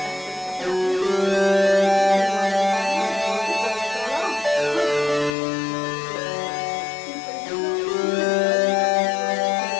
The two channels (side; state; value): right; drops out; at 5.3 s